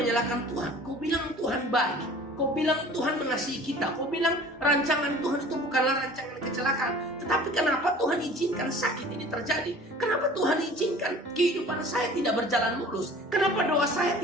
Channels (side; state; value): both; normal; correlation 0.46